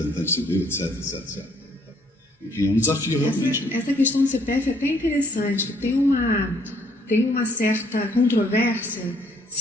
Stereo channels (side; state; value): both; normal; correlation 0.65